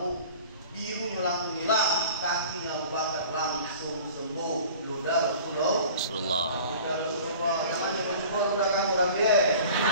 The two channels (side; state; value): both; inverted; correlation -0.43